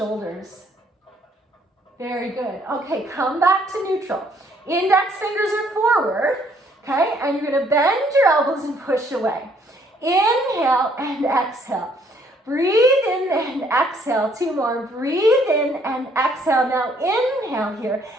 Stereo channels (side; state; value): both; normal; correlation 0.65